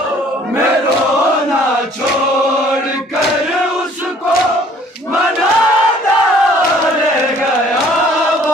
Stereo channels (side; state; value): both; normal; correlation 0.56